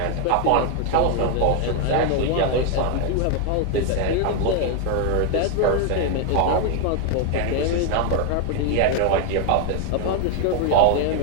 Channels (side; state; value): both; different; correlation 0.01